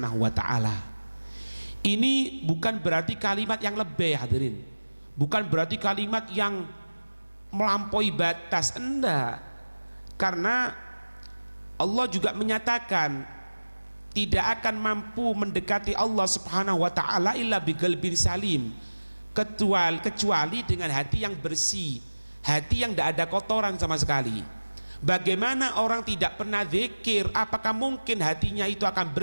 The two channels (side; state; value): both; inverted; correlation -1.00